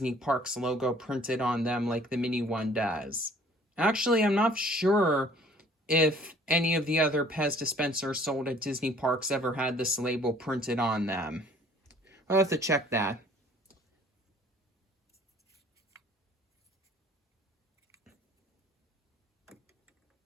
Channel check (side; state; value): both; normal; correlation 0.55